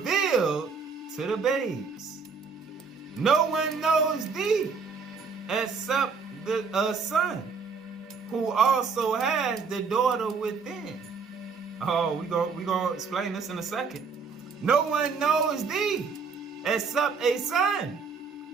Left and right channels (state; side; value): quieter; left; 5.2 dB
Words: to the babes. No one knows thee except a son, who also has the daughter within. Oh, we gonna explain this in a second. No one knows thee except a son,